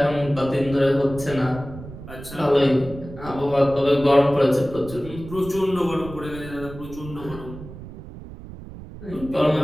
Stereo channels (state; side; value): noise; right; rumble, 14 dB below the sound